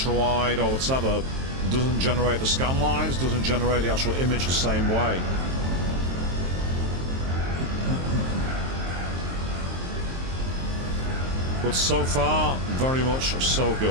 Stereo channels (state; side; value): late; left; 23 ms